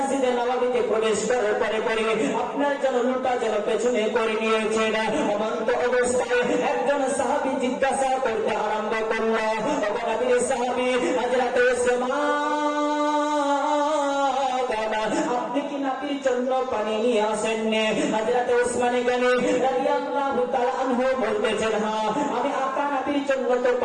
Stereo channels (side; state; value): both; identical; correlation 1.00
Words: নববীতে প্রবেশ করার পরে আপনার জন্য লোটা যেন পেছনে করে নিয়েছেন। অনন্ত অবস্থায় একজন সাহাবী জিজ্ঞাসা করতে আরম্ভ করলো, নবীর সাহাবী হযরত উসমান, আপনি কি নবীর জন্য পানি নিয়ে আসেননি? হযরত উসমানে গানি রাদিয়াল্লাহু তাআলা আনহু বলতেছেন হ্যাঁ, আমি আকা নবীর জন্য তো